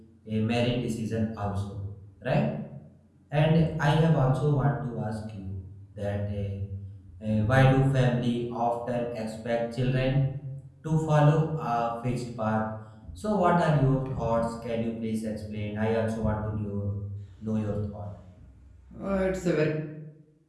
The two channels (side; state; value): both; identical; correlation 1.00